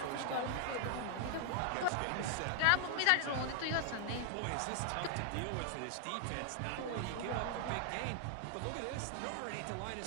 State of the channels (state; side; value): different; both; correlation -0.01